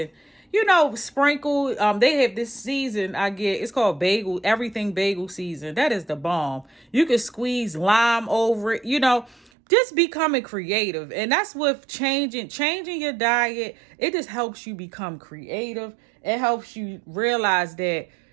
sprinkle. They have this season it's called everything bagel season. That is the bomb. You can squeeze lime over it, just becoming creative. And that's with changing your diet. It just helps you become creative. It helps you realize that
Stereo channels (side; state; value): left; drops out; at 9.5 s